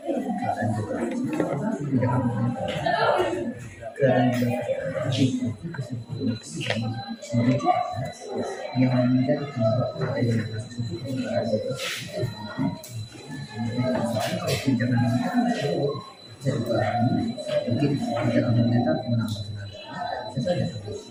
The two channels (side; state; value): both; identical; correlation 1.00